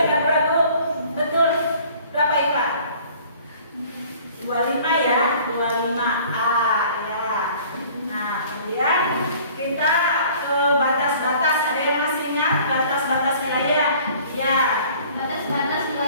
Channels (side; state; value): both; inverted; correlation -0.51